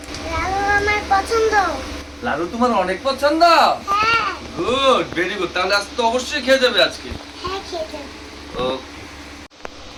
লালু আমার পছন্দ। লাড়ু তোমার অনেক পছন্দ। হ্যাঁ গুড, ভেরি গুড। তাহলে আজ তো অবশ্যই খেয়ে যাবে আজকে। হ্যাঁ খেতে। ওকে,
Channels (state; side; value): identical; both; correlation 1.00